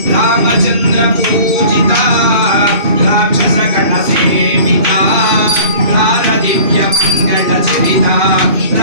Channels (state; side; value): late; left; 2.6 ms